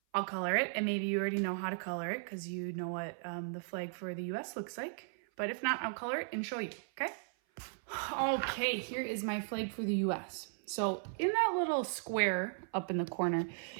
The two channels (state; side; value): silent; left; 54 dB below the other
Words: I'll color it, and maybe you already know how to color it because you know what the flag for the US looks like. But if not, I'll color it and show you, okay? Okay, here is my flag for the US. So in that little square up in the corner,